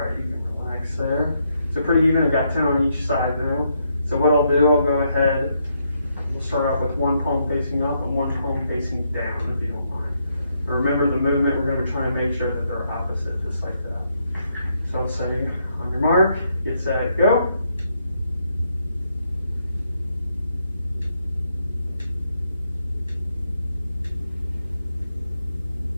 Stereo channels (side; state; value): both; inverted; correlation -0.77